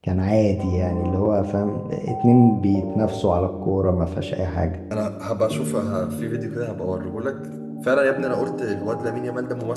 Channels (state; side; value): identical; both; correlation 1.00